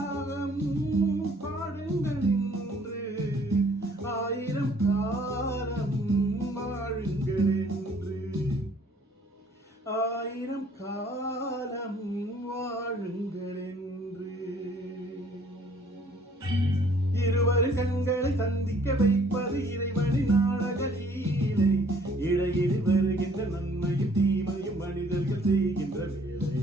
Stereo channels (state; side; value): normal; both; correlation 0.59